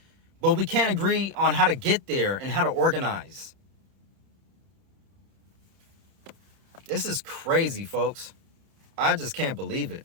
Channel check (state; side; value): late; left; 31 ms